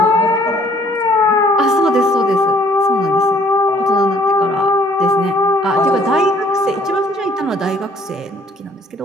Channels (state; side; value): normal; both; correlation 0.60